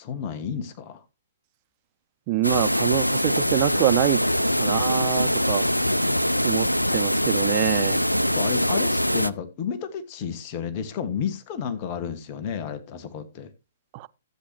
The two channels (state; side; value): inverted; both; correlation -0.70